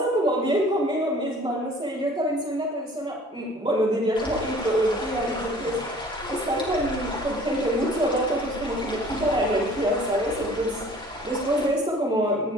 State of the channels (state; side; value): normal; both; correlation 0.50